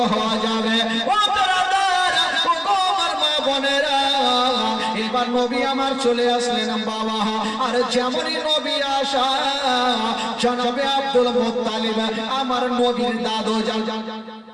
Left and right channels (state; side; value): identical; both; correlation 1.00